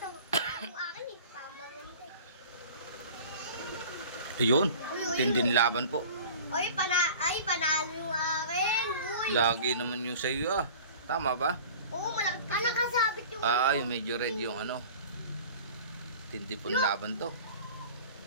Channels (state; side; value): inverted; both; correlation -0.42